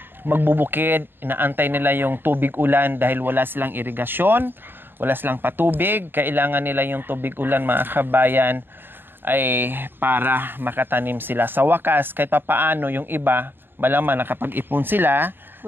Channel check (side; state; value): left; late; 0.098 ms